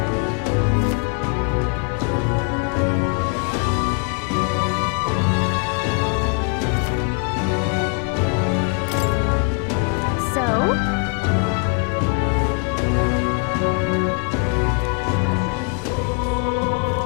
Smash it all to bits!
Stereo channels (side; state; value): right; quieter; 36.4 dB